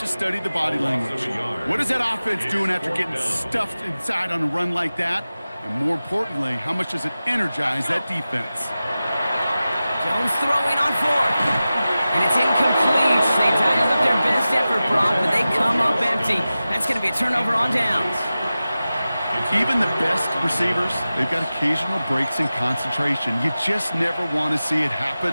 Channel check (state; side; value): inverted; both; correlation -0.95